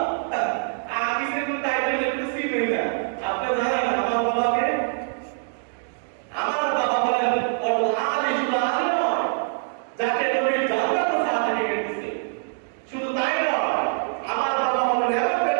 আমি সেটা টাইটেল লিখতেছি না। আপনি জানেন আমার বাবাকে? আমার বাবা বলেন আলিফুল আলিম, যাকে নবী জান্নাত সার্টিফিকেট দিয়েছে। শুধু তাই নয়, আমার বাবা হলেন এমন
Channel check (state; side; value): silent; left; digital silence